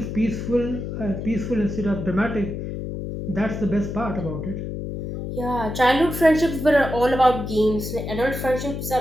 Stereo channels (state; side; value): noise; left; hum, 6 dB below the sound